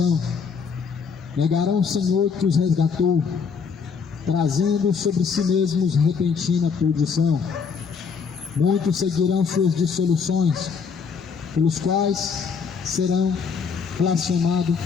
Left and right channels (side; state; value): right; quieter; 5.8 dB